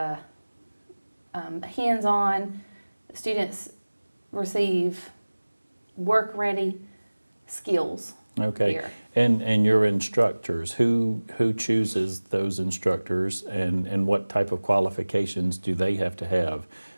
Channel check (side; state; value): both; inverted; correlation -1.00